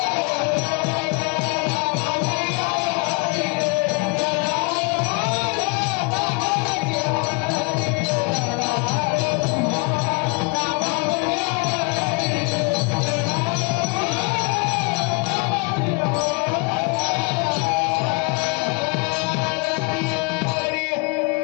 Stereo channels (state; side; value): quieter; right; 30.1 dB